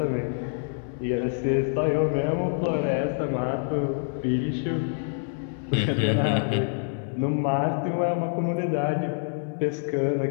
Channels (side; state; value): right; silent; 61 dB below the other